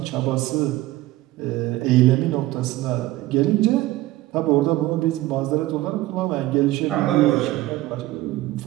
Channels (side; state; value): left; quieter; 17.0 dB